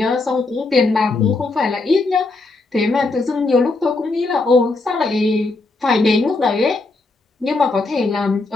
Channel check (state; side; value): quieter; right; 3.4 dB